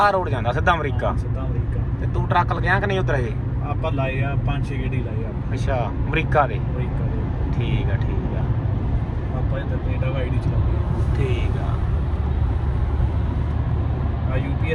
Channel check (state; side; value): identical; both; correlation 1.00